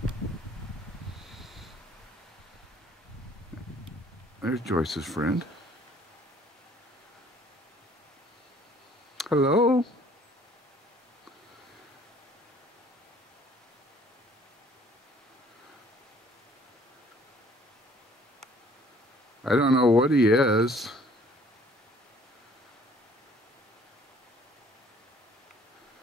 There's Joyce's friend. Hello? I don't know what he is.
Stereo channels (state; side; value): normal; both; correlation 0.57